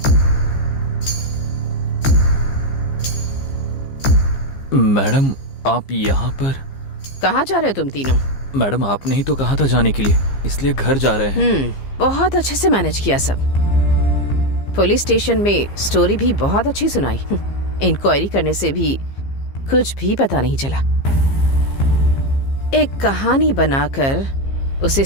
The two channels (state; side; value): late; right; 15 ms